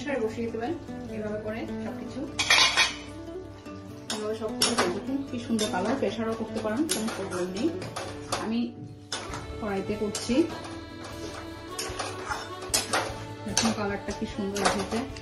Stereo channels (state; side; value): identical; both; correlation 1.00